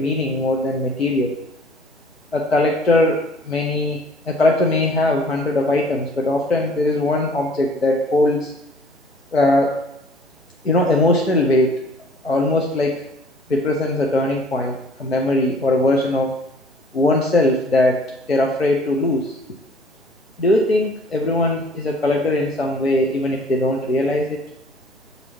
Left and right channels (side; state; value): both; normal; correlation 0.53